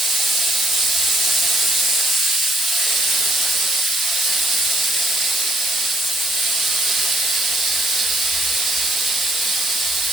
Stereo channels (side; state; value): both; normal; correlation 0.68